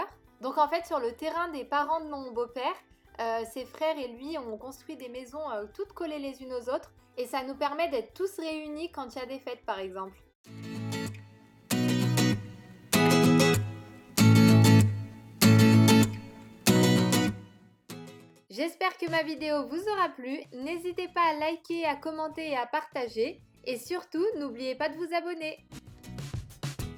Donc en fait, sur le terrain des parents de mon beau-père, ses frères et lui ont construit des maisons toutes collées les unes aux autres et ça nous permet d'être tous réunis quand il y a des fêtes par exemple. J'espère que ma vidéo vous aura plu. N'hésitez pas à liker, à commenter et à partager. Et surtout, n'oubliez pas de vous abonner.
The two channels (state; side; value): identical; both; correlation 1.00